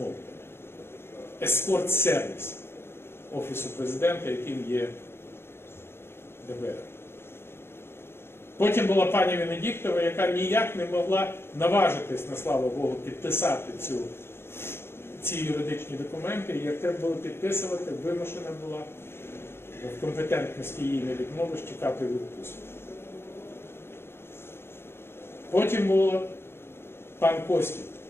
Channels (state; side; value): late; right; 0.12 ms